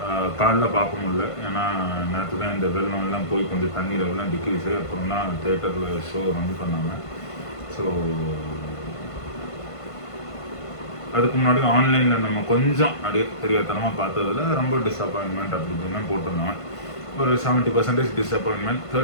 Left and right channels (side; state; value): right; late; 1.5 ms